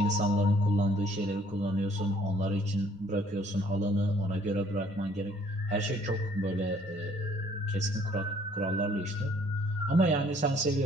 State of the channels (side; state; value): both; normal; correlation 0.61